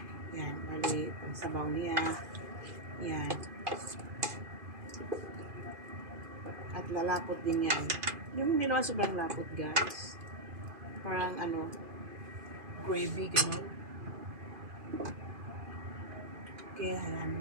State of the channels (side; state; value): left; late; 2.5 ms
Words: Yan, bali pang sabaw niya. Yan. At lalapot din yan. Yung hindi naman sobrang lapot, guys. Parang, gravy, gano'n. Okay, halamin